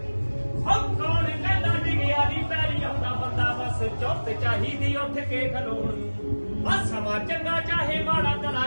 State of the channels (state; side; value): inverted; both; correlation -1.00